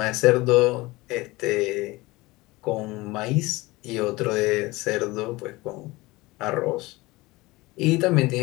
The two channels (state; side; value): quieter; right; 21.4 dB